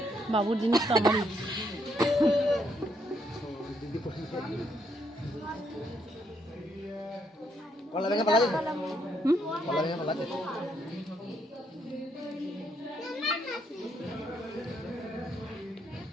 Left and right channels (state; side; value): normal; both; correlation 0.74